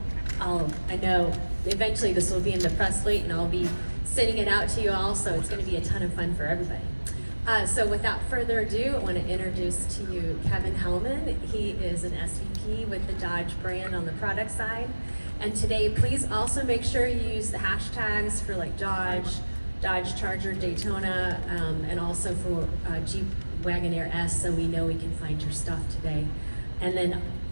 know eventually this will be in the press suite and I'll be sending it out to you all, so it's going to be a ton of fun for everybody. So without further ado, I want to introduce to you Kevin Hellman. He is an SVP with the Dodge brand on the product side. And today, please also make sure you use the hashtags for like Dodge Charger, Daytona, and also for Jeep Wagoneer S, so we know we can find your stuff today. And then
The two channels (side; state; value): both; inverted; correlation -1.00